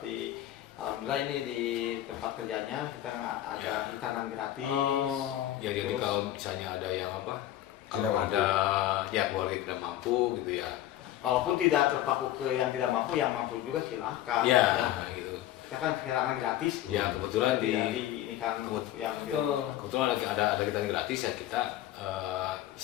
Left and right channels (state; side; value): quieter; right; 13.3 dB